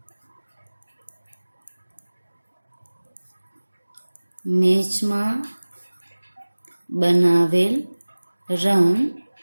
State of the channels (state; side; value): inverted; both; correlation -1.00